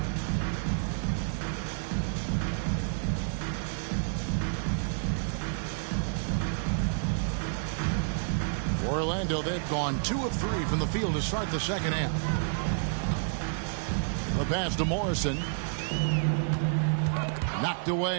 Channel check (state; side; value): silent; left; digital silence